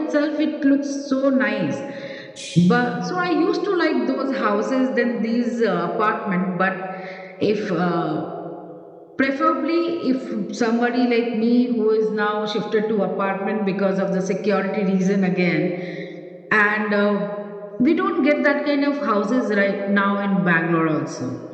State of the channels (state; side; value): identical; both; correlation 1.00